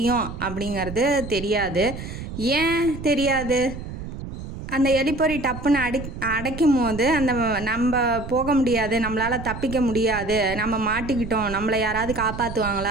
அப்படிங்கிறது தெரியாது. ஏன் தெரியாது? அந்த எலிப்பொறி டப்புன்னு அடைக்கும் போது அந்த நம்ம போக முடியாது, நம்மளால் தப்பிக்க முடியாது, நம்ம மாட்டிக்கிட்டோம், நம்மளை யாராவது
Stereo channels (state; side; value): noise; right; rumble, 9 dB below the sound